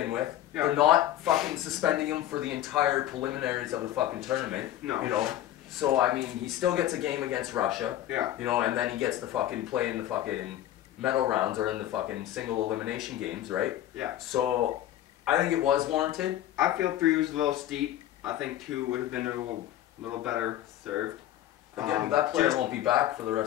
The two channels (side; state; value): right; quieter; 12.8 dB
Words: with. Yeah. They're not fucking suspending him for the entire preliminaries of the fucking tournament. No. You know? So, I mean, he still gets a game against Russia. Yeah. You know, and then he gets to fucking play in the fucking medal rounds or in the fucking single elimination games, right? Yeah. So, I think it was warranted. I feel 3 was a little steep. I think 2 would have been a little better served. Again, that player won't be back for the